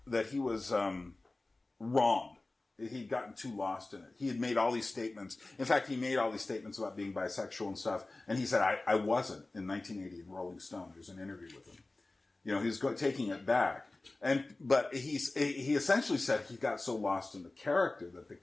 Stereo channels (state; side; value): quieter; right; 3.1 dB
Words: wrong. He'd gotten too lost in it. He had made all these statements. In fact, he made all these statements about being bisexual and stuff. And he said, I wasn't, in 1980 in Rolling Stone. There was an interview with him. He was taking it back. But he essentially said he got so lost in the character that the